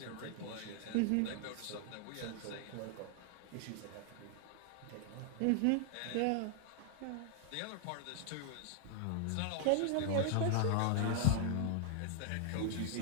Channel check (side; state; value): both; different; correlation 0.00